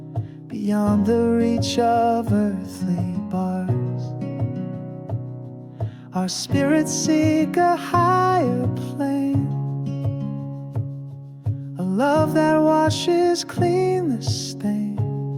beyond the reach of earthly bars, Our spirits seek a higher plane, a love that washes clean the stain,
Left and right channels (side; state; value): both; identical; correlation 1.00